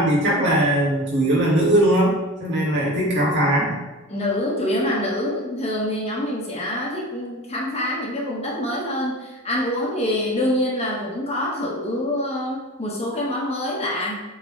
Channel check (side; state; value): both; normal; correlation 0.34